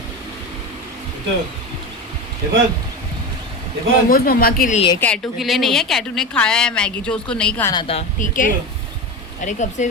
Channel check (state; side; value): normal; both; correlation 0.23